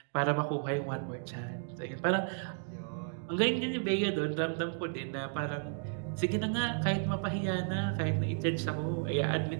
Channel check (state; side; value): silent; left; 55 dB below the other